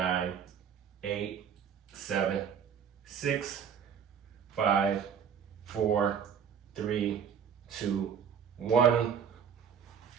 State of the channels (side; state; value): left; quieter; 7.5 dB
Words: 8, 7, 6, 5, 4, 3, 2, 1.